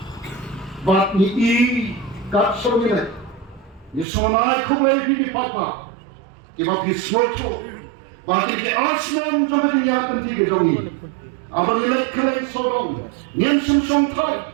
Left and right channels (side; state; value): left; drops out; at 4.0 s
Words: Bat ni kat somine ni sonai kumai di Paidbah. Kiba bismoto bagi ke aslan jom dunia kenti gedongi. Abang nilai kelai sodong nyen sum thai.